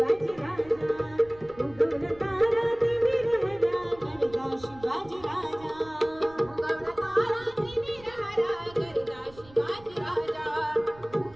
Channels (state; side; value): noise; right; rumble, 23 dB below the sound